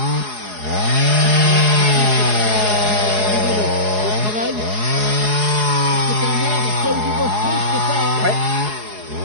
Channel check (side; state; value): left; late; 4.8 ms